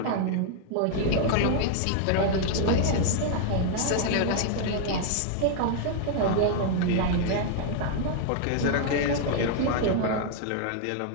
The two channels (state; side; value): different; both; correlation 0.00